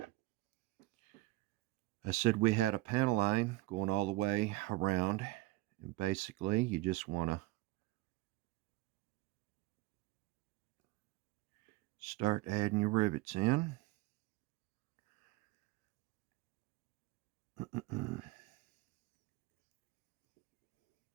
I said we had a panel line going all the way around, and basically you just want to start adding your rivets in.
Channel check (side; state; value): left; quieter; 18.4 dB